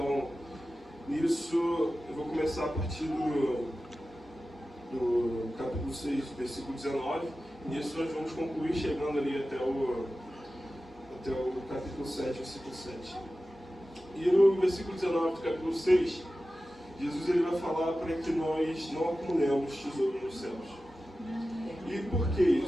nisso, eu vou começar a partir do capítulo 6, versículo 19. Nisso nós vamos concluir chegando ali até o capítulo 7, versículo 7. E no versículo 19 do capítulo 6, Jesus ele vai falar para que nós não acumulemos tesouro nos céus. E por que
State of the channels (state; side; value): normal; both; correlation 0.94